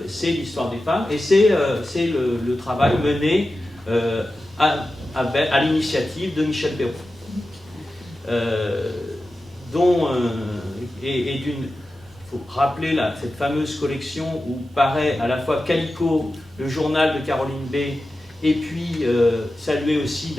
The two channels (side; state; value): both; normal; correlation 0.93